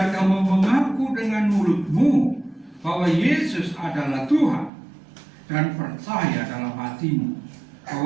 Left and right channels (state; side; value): drops out; left; at 4.7 s